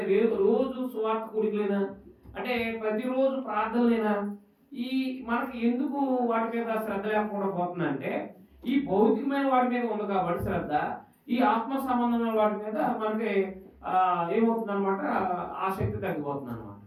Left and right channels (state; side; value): identical; both; correlation 1.00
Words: రోజు సువార్త కూడికలేనా, అంటే ప్రతిరోజు ప్రార్థనలేనా, ఈ మనకి ఎందుకు వాటి మీద శ్రద్ధ లేకుండా పోతుందంటే ఈ భౌతికమైన వాటి మీద ఉంది కాబట్టి శ్రద్ధ, ఈ ఆత్మ సంబంధమైన వాటి మీద మనకి ఏమవుతుంది అనమాట, ఆసక్తి తగ్గిపోతుంది అనమాట.